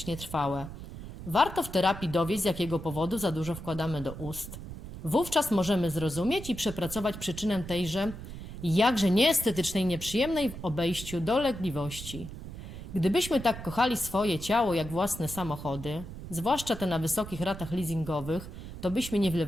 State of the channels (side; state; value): right; noise; rumble, 11 dB below the sound